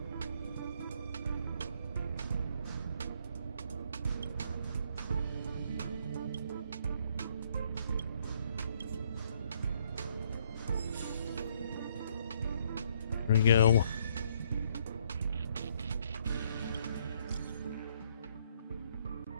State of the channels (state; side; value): inverted; both; correlation -0.68